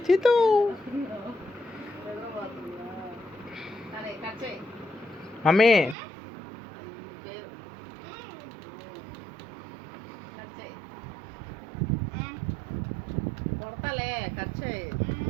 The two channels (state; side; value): drops out; left; at 6.0 s